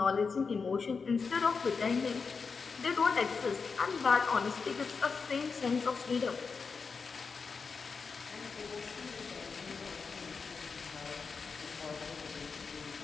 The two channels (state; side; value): quieter; right; 5.1 dB